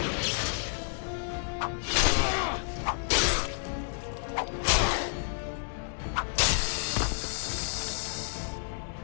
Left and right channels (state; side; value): silent; right; digital silence